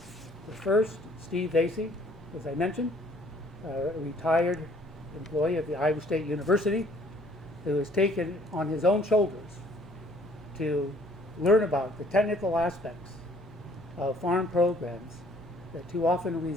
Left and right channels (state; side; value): normal; both; correlation 0.59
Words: The first, Steve Vasey, as I mentioned, a retired employee of the Iowa State University, who has taken on his own shoulders to learn about the technical aspects of farm programs that too often